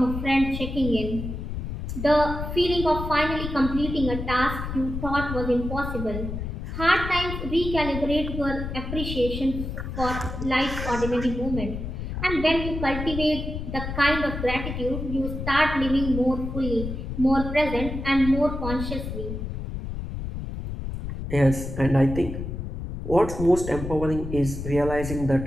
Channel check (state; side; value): noise; left; rumble, 6 dB below the sound